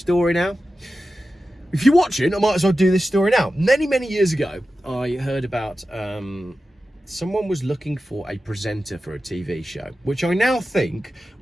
now? If you're watching, I might as well do this story now. Many years ago, I heard about someone was looking for a presenter for a TV show, which I now think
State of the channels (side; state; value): both; normal; correlation 0.93